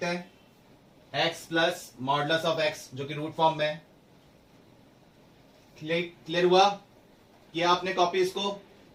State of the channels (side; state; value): both; identical; correlation 1.00